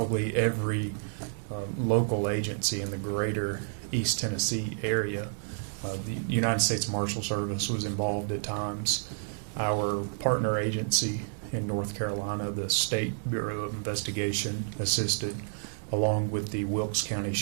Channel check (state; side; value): silent; left; digital silence